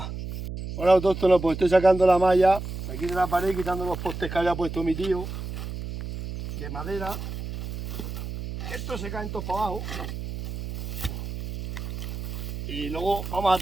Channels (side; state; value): right; noise; hum, 7 dB below the sound